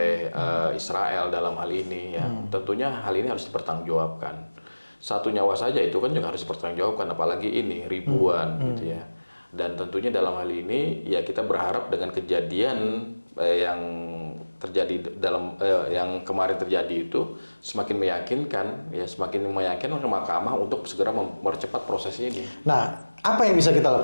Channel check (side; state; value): both; inverted; correlation -1.00